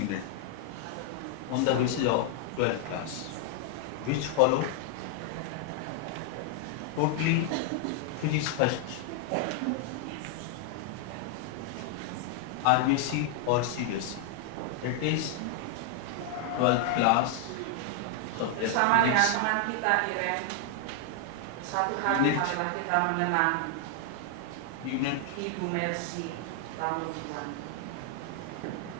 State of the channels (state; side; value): different; both; correlation 0.00